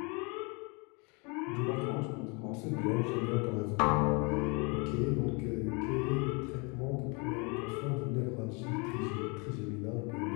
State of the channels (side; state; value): right; quieter; 31.2 dB